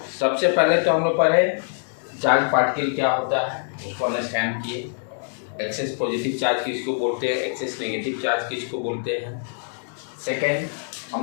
सबसे पहले तो हम लोग पढ़े चार्ज पार्टिकल क्या होता है, उसको अंडरस्टैंड किए। एक्सेस पॉजिटिव चार्ज किसको बोलते हैं, एक्सेस नेगेटिव चार्ज किसको बोलते हैं। सेकेंड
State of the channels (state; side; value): silent; right; digital silence